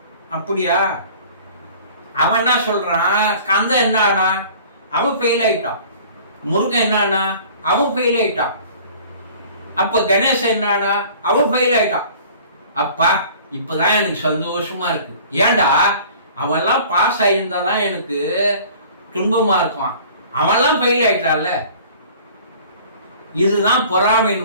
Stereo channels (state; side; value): inverted; both; correlation -0.48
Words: அப்படியா? அவன் என்ன சொல்றான், கந்தன் என்ன ஆனா, அவன் ஃபெயில் ஆயிட்டான். முருகன் என்ன ஆனா, அவன் ஃபெயில் ஆயிட்டான். அப்ப கணேசன் என்ன ஆனா, அவன் ஃபெயில் ஆயிட்டான். அப்பா இப்பதான் எனக்கு சந்தோஷமா இருக்கு. ஏண்டா, அவெல்லாம் பாஸ் ஆயிருந்தாதான் எனக்கு துன்பமா இருக்கும், அவெல்லாம் ஃபெயில் ஆயிட்டான்ல. இதுதான்